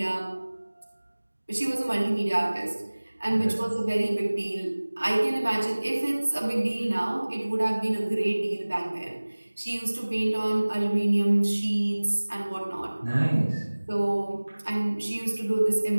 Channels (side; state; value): both; inverted; correlation -1.00